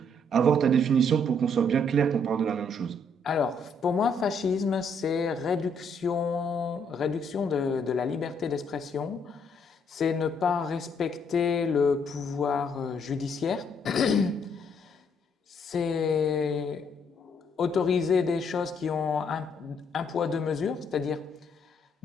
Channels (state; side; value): normal; both; correlation 0.70